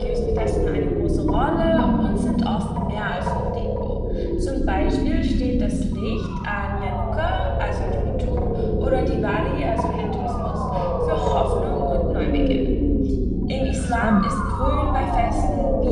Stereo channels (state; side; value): identical; both; correlation 1.00